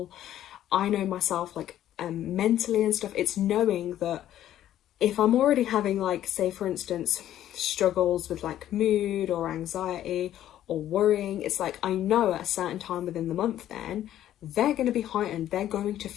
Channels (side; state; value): right; quieter; 12.1 dB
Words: I know myself, like mentally and stuff, it's knowing that if I'm already having, like, say for instance, struggles with like mood or anxiety or worrying, it's like I know at a certain time within the month then they're going to be heightened. They're going to